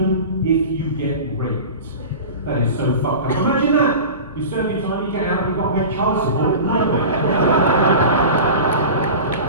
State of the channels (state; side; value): inverted; both; correlation -0.33